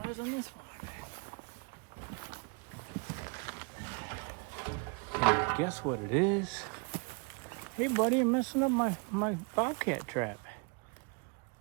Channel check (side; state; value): left; quieter; 34.8 dB